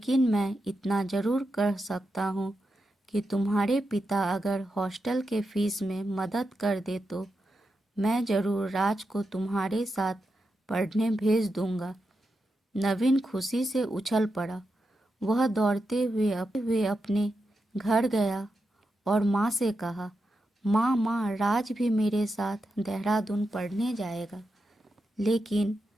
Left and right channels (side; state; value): both; normal; correlation 0.87